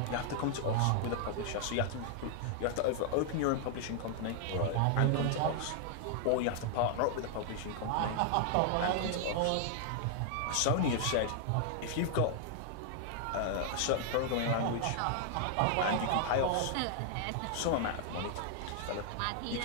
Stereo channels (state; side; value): different; both; correlation 0.00